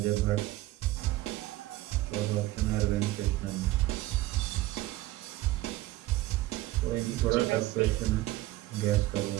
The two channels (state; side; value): quieter; left; 17.1 dB